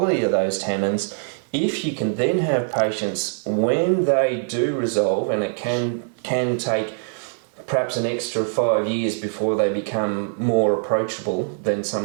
of those tannins, if you can then have patience when they do resolve, and it can take perhaps an extra 5 years before they become more approachable than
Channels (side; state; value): left; silent; digital silence